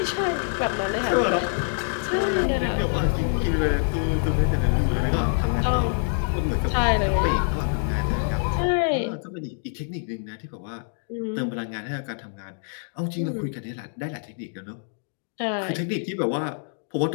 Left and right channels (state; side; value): silent; right; digital silence